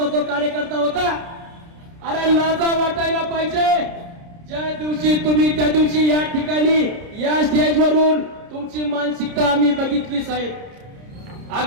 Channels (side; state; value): left; late; 30 ms